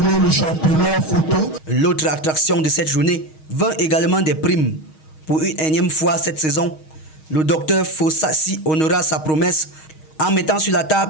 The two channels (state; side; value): late; right; 6.4 ms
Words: le championnat photo. L'autre attraction de cette journée vint également des primes. Pour une énième fois cette saison, le docteur Fossassi honora sa promesse en mettant sur la